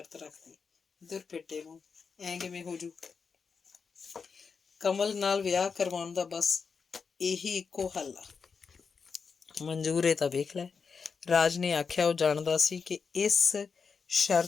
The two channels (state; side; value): quieter; right; 5.5 dB